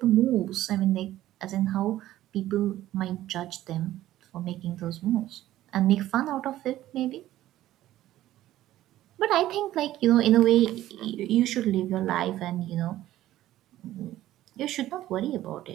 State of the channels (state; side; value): quieter; left; 14.2 dB